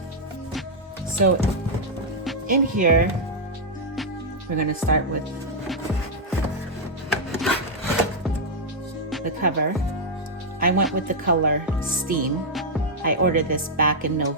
So in here, we're going to start with the cover. I went with the color Steam. I ordered this back in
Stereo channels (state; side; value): normal; both; correlation -0.04